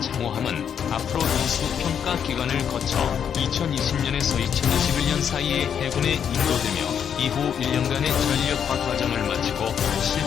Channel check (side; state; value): right; quieter; 8.1 dB